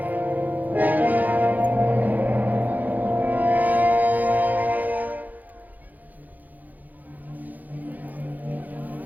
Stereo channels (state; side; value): late; left; 0.082 ms